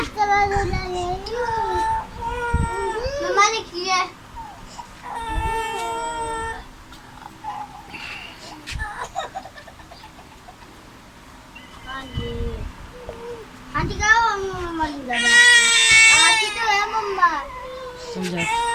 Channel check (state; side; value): identical; both; correlation 1.00